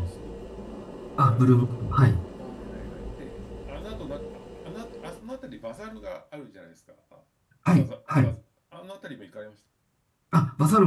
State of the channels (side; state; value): both; identical; correlation 1.00